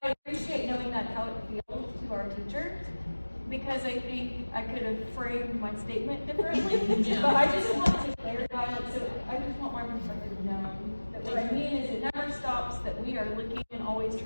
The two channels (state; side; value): inverted; both; correlation -1.00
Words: I appreciate knowing that's how it feels to our teachers, because I think I could have framed my statement differently, but I just want to clarify it, so I just want my perspective known. That what I mean is it never stops, that we are looking and always